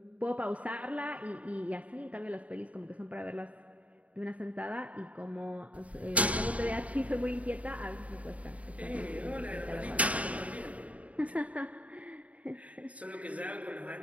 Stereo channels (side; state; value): left; late; 0.068 ms